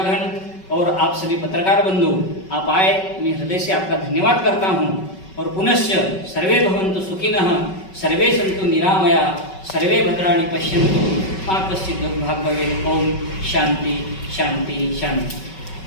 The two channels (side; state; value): right; late; 5.3 ms